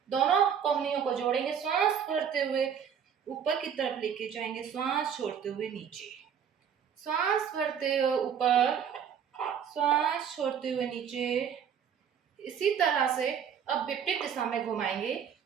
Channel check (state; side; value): quieter; left; 7.9 dB